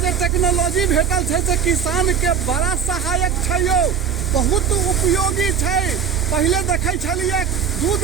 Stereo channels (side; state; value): left; quieter; 7.4 dB